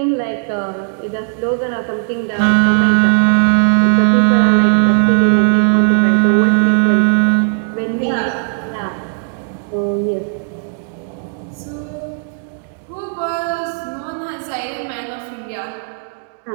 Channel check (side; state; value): left; silent; 64 dB below the other